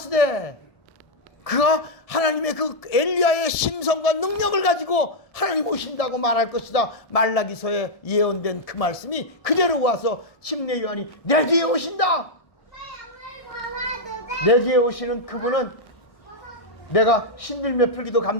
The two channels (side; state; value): right; late; 1.7 ms